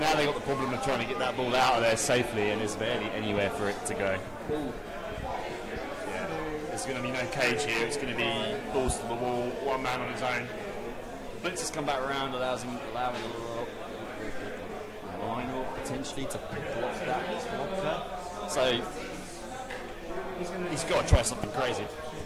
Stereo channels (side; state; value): both; identical; correlation 1.00